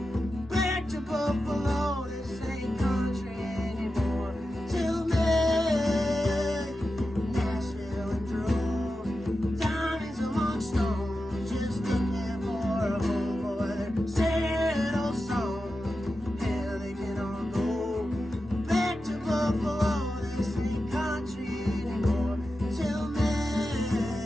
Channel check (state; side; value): normal; both; correlation 0.91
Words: back to Buffalo. This ain't country anymore. Till May, Nashville in droves, diamonds among stones, just looking for a home for their sad old songs. Hell, they can all go back to Buffalo. This ain't country anymore. Till May,